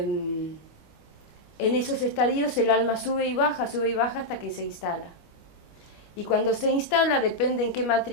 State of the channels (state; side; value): late; right; 25 ms